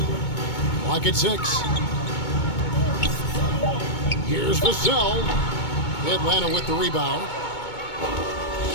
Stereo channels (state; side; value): late; right; 2.2 ms